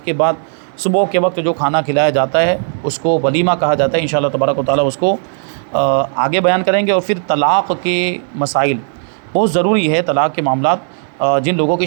کے بعد صبح کے وقت جو کھانا کھلایا جاتا ہے اس کو ولیمہ کہا جاتا ہے۔ انشاءاللہ تبارک و تعالیٰ اس کو آگے بیان کریں گے۔ اور پھر طلاق کے مسائل بہت ضروری ہے، طلاق کے معاملات جن لوگوں کی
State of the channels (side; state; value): left; silent; digital silence